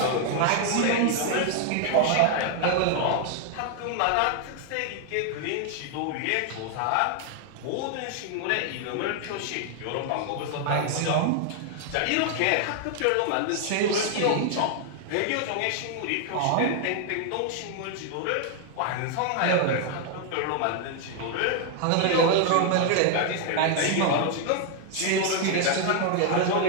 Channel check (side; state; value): both; different; correlation 0.00